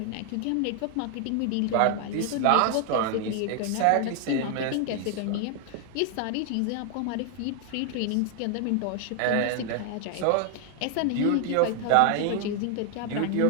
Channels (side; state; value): both; different; correlation 0.00